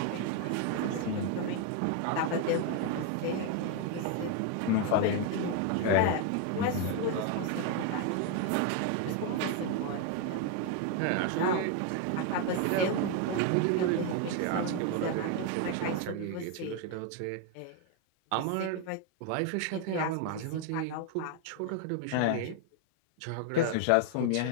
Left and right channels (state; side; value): different; both; correlation 0.01